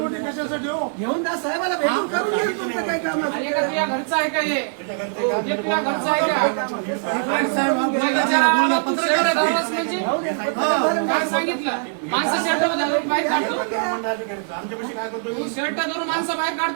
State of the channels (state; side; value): silent; left; digital silence